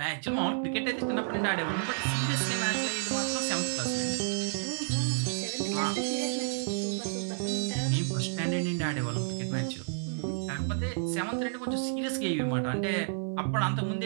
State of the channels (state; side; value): silent; left; 57 dB below the other